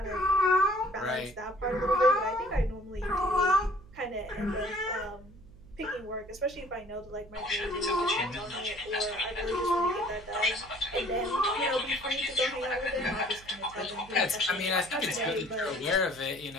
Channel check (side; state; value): right; noise; hum, 21 dB below the sound